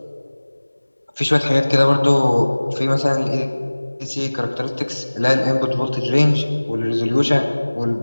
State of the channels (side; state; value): both; inverted; correlation -1.00